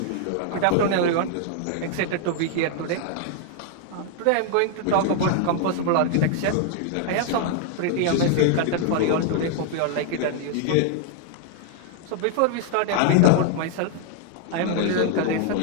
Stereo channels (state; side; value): different; both; correlation 0.00